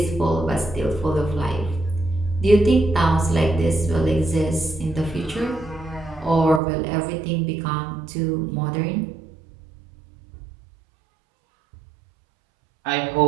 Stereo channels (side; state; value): left; drops out; at 6.6 s